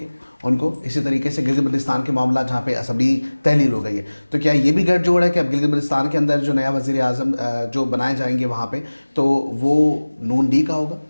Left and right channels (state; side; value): inverted; both; correlation -1.00